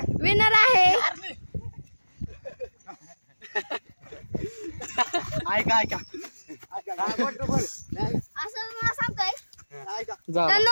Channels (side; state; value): both; inverted; correlation -1.00